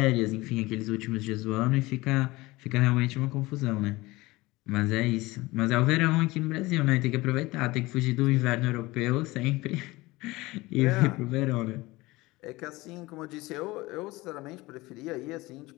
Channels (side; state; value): right; quieter; 20.8 dB